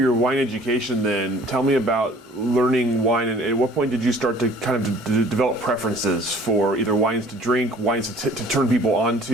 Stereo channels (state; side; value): normal; both; correlation 0.53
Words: wine education then, tell me about learning wine, and at what point did you start to kind of develop preferences for either wines to drink, wines to turn people